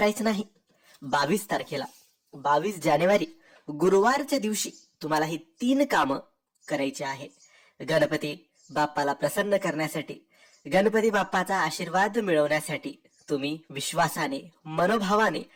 नाही. 22 तारखेला 22 जानेवारी गुरुवारच्या दिवशी तुम्हाला ही 3 कामं करायची आहे. गणपती बाप्पाला प्रसन्न करण्यासाठी, गणपती बाप्पाचा आशीर्वाद मिळवण्यासाठी तुम्ही विश्वासाने, मनोभावाने,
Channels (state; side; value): identical; both; correlation 1.00